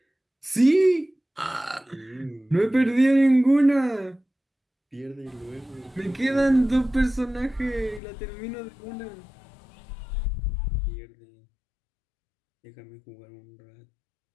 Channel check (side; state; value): right; drops out; at 8.0 s